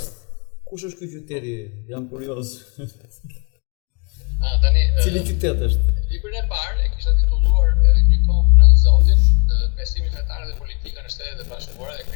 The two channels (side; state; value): right; quieter; 33.5 dB